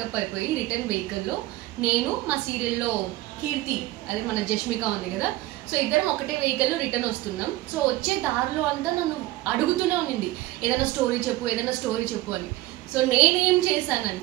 అయిపోయి రిటర్న్ వెహికల్లో నేను మా సీరియల్లో కీర్తి, అదే మన జష్మిక ఉంది కదా, సో ఇద్దరం ఒకటే వెహికల్లో రిటర్న్ వస్తున్నాం. సో వచ్చే దారిలో అంతా నన్ను అడుగుతూనే ఉన్నింది, ఏదైనా స్టోరీ చెప్పు అని. సో నేనేం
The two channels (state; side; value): quieter; left; 17.6 dB